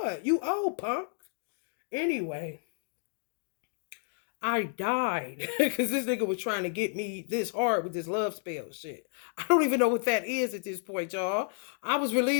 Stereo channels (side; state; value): right; silent; 57 dB below the other